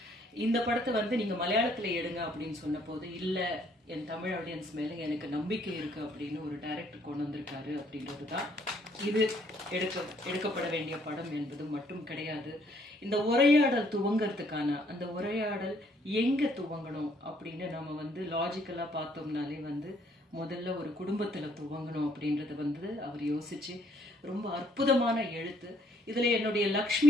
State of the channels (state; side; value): normal; both; correlation 0.66